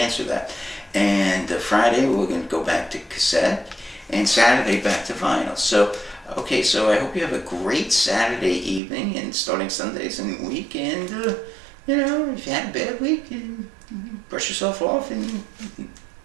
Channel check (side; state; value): left; drops out; at 8.8 s